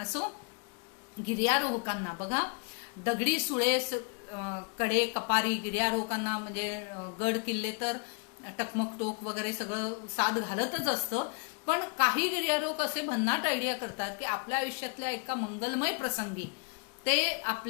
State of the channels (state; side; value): quieter; right; 37.0 dB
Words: गिर्यारोहकांना बघा, दगडी सुळे कडे कपारी गिर्यारोहकांना म्हणजे गड किल्ले तर टकमक टोक वगैरे सगळं साथ घालतच असतं. पण काही गिर्यारोहक असे भन्नाट आयडिया करतात की आपल्या आयुष्यातल्या एका मंगलमय प्रसंगी ते